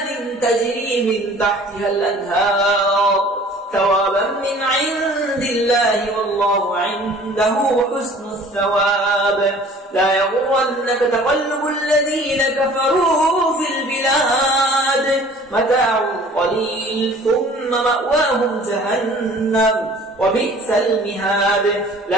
تجري من تحتها الأنهار ثوابا من عند الله والله عنده حسن الثواب لا يغرنك تقلب الذين كفروا في البلاد متاع قليل ثم مأواهم جهنم وبئس المهاد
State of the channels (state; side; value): normal; both; correlation 0.50